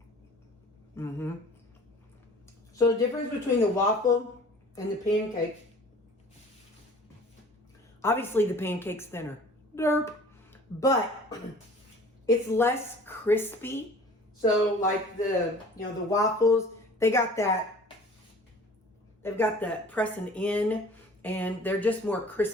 So the difference between the waffle and the pancake, obviously the pancake's thinner, derp, but It's less crispy. So like the waffles, they've got that pressing in, and they're just more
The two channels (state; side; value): normal; both; correlation 0.47